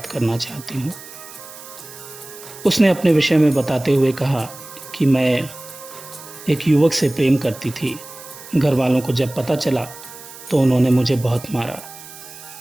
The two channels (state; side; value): noise; right; hiss, 16 dB below the sound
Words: करना चाहती हूँ। उसने अपने विषय में बताते हुए कहा कि मैं एक युवक से प्रेम करती थी, घर वालों को जब पता चला तो उन्होंने मुझे बहुत मारा।